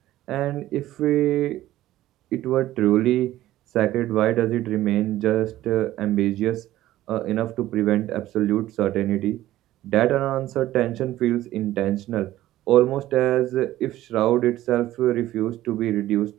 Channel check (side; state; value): left; quieter; 14.8 dB